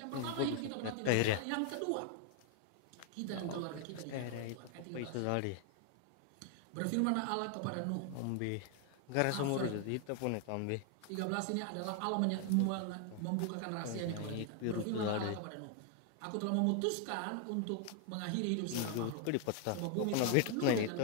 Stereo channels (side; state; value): both; different; correlation 0.00